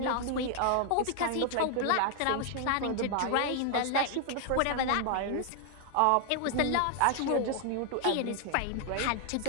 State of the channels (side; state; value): both; different; correlation 0.00